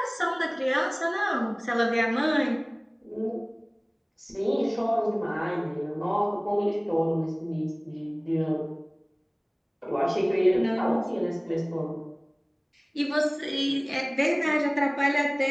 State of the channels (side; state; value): both; identical; correlation 1.00